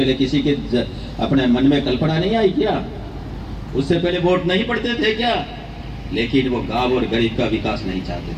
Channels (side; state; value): both; identical; correlation 1.00